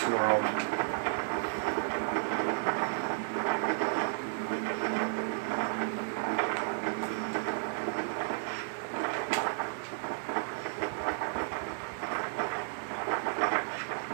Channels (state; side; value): silent; left; digital silence